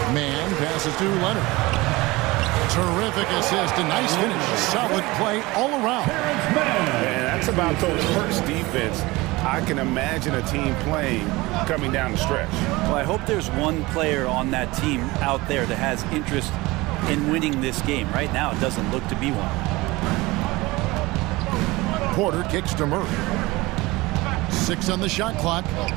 Mann passes to Leonard. Terrific assist, a nice finish. Solid play all around. And that's about Coach Hurt's defense. I can imagine a team playing coming down the stretch. Well, I hope there's one player on that team out there that has interest in winning this game. Right now, it doesn't look to be one. Porter kicks to Murray. 6 on the shot clock.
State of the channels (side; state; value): left; quieter; 21.4 dB